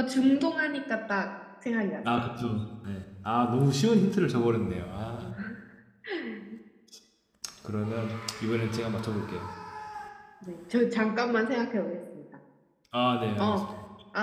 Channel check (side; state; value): both; identical; correlation 1.00